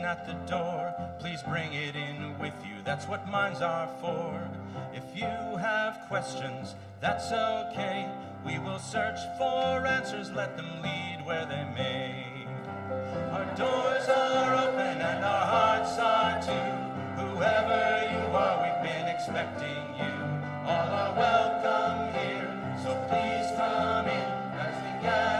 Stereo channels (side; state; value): both; identical; correlation 1.00